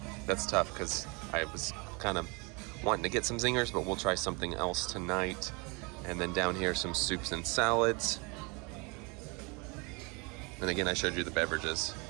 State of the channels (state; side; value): quieter; left; 29.7 dB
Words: because I was kind of wanting to get some Zingers, but we'll try something else tonight. And then down here, some soups and salads. And again, I showed you the beverages.